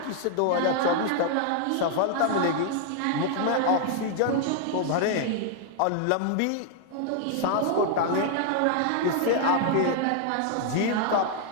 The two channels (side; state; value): both; different; correlation 0.00